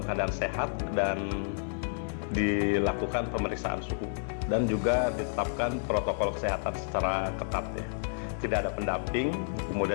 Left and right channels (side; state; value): right; silent; 55 dB below the other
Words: keadaan sehat dan dilakukan pemeriksaan suhu dan juga ditetapkan protokol kesehatan secara ketat ya. Tidak ada pendamping,